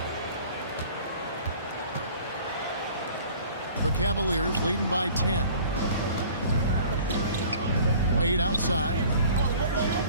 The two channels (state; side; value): inverted; both; correlation -0.48